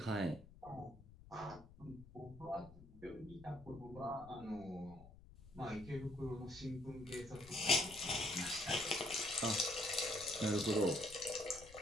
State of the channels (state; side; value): noise; left; rumble, 19 dB below the sound